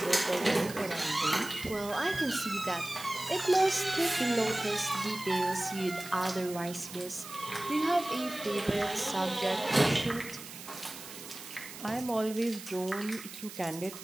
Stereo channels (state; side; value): noise; right; hiss, 13 dB below the sound